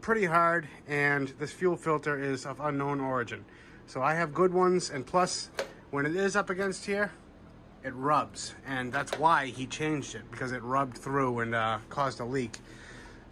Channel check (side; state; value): both; identical; correlation 1.00